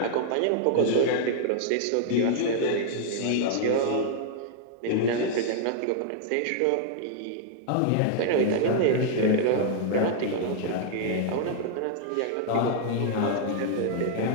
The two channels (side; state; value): both; different; correlation -0.01